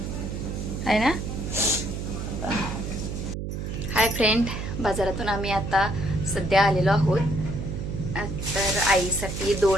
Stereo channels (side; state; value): right; noise; hum, 5 dB below the sound